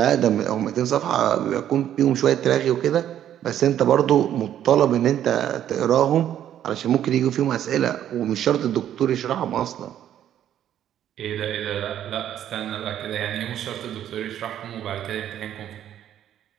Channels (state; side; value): quieter; left; 10.8 dB